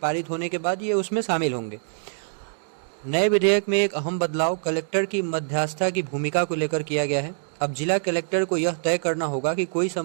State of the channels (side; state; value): left; silent; digital silence